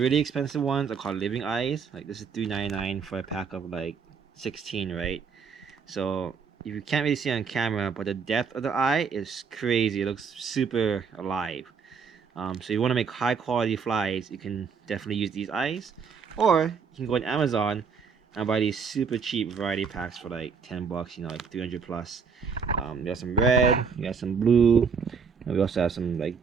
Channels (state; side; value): quieter; left; 5.9 dB